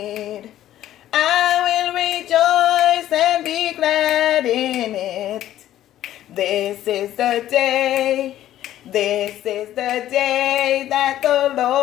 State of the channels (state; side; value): quieter; right; 12.8 dB